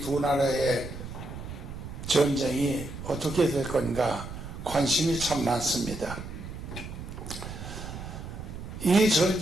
두 나라의 전쟁이 어떻게 될 건가 관심이 참 많습니다. 이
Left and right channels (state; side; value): noise; right; rumble, 10 dB below the sound